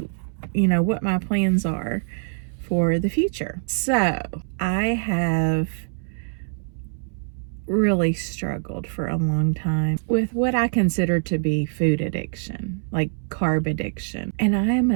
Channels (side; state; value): left; silent; 63 dB below the other